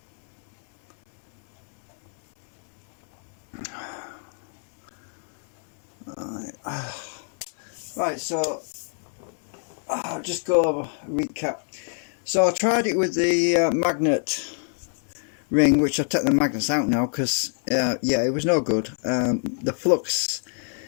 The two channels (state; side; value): silent; right; 62 dB below the other